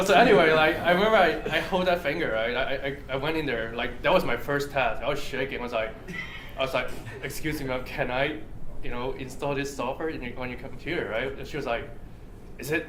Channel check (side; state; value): both; identical; correlation 1.00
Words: anyway, I remember I hold that finger, right? I went in there, that was my first task. I was shaking. I was like, excuse me, ma'am, can I, install this software on your computer, right? And she was like, is